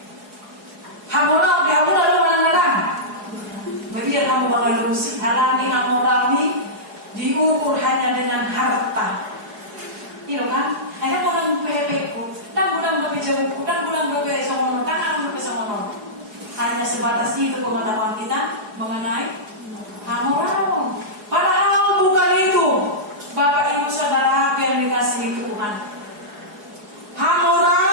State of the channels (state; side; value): late; left; 4.8 ms